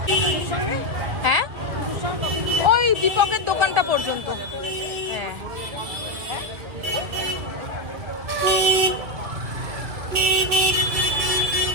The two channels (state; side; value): late; left; 2.1 ms